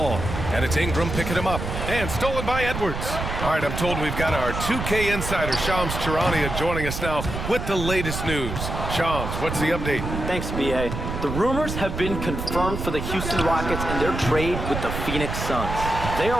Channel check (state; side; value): noise; right; rumble, 5 dB below the sound